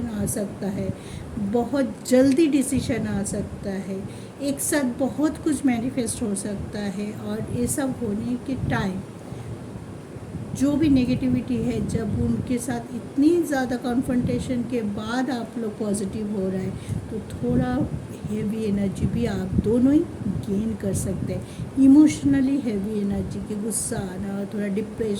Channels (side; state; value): both; identical; correlation 1.00